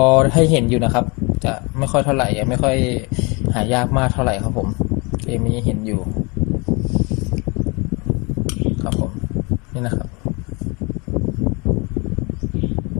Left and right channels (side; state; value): right; quieter; 29.1 dB